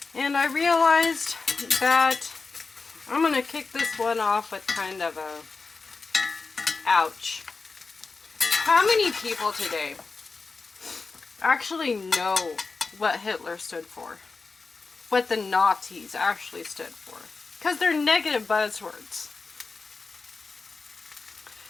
And I realized that I'm going to kick this one off with kind of a ouch. How many people today actually know what Hitler stood for? What the Nazis actually stood for? Because they're negative buzzwords.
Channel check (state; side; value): quieter; right; 4.2 dB